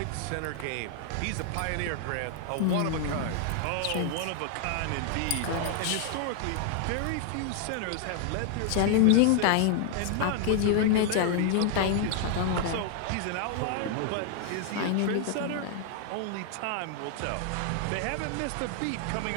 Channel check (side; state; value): both; different; correlation 0.00